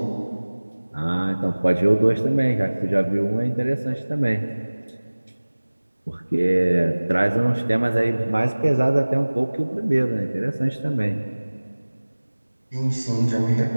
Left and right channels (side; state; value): both; inverted; correlation -1.00